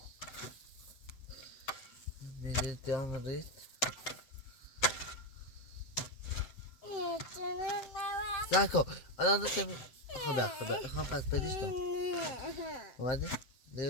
میدید دیان رید ساکن الان داشتم خدا خواهم پس بدیش دام اومده؟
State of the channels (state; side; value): late; right; 7.6 ms